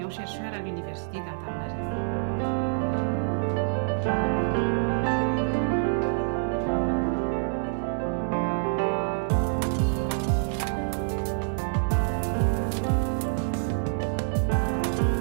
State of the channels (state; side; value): silent; left; digital silence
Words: à l'Université d'Antananarivo.